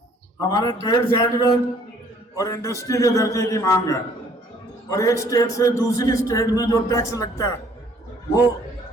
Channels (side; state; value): both; normal; correlation 0.60